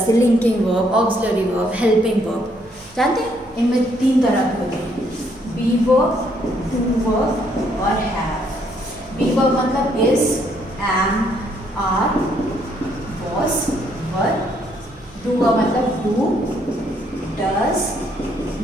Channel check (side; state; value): right; noise; hum, 28 dB below the sound